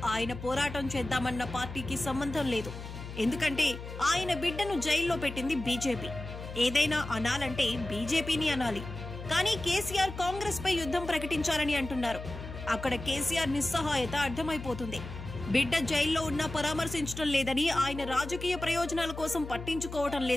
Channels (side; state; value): left; noise; hum, 10 dB below the sound